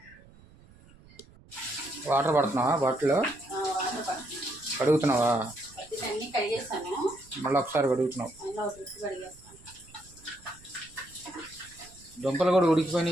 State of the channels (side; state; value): right; noise; rumble, 24 dB below the sound